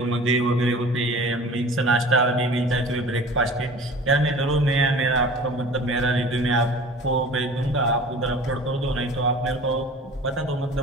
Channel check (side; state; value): both; normal; correlation 0.42